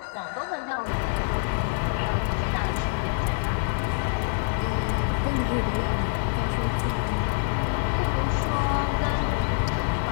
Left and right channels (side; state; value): right; silent; digital silence